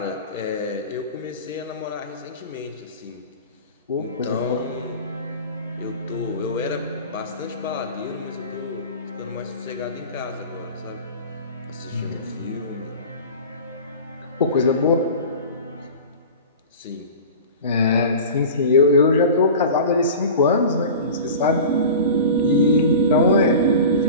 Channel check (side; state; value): both; inverted; correlation -0.35